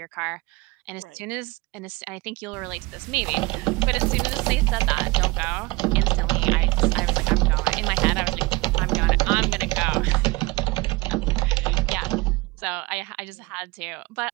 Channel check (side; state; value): left; quieter; 23.1 dB